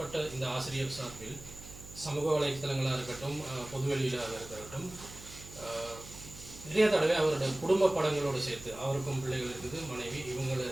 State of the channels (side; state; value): right; noise; hum, 16 dB below the sound